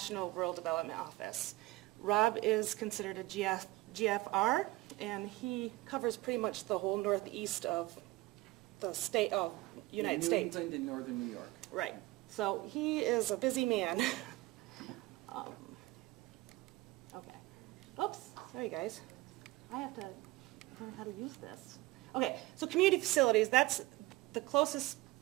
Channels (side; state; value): left; quieter; 19.5 dB